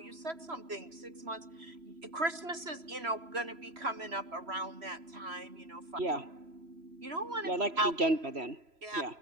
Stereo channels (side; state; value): left; late; 3.0 ms